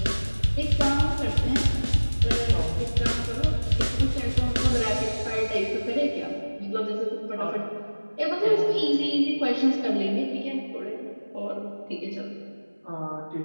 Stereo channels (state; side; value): inverted; both; correlation -1.00